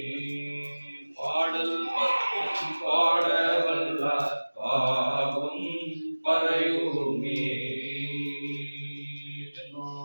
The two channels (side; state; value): both; inverted; correlation -1.00